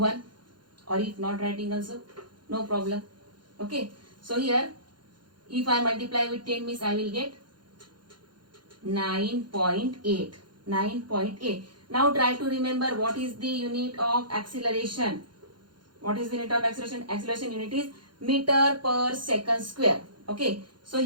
or if not writing also no problem. Okay, so here if I multiply with 10 means I will get 9.8. 9.8. Now try to remember what is the unit of acceleration. What is the unit of acceleration? Acceleration unit is meter per second square. Okay, so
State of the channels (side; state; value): left; late; 0.71 ms